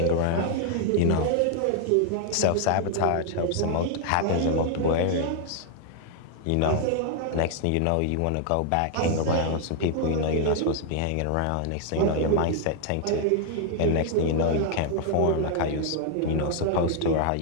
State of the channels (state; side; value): different; both; correlation 0.00